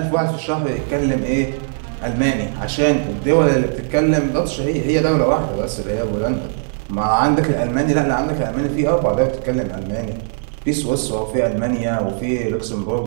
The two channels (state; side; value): silent; left; digital silence